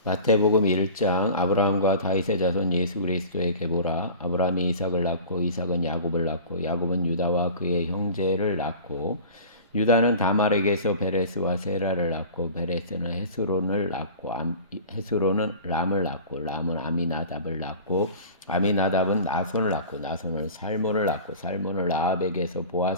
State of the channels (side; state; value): both; inverted; correlation -0.39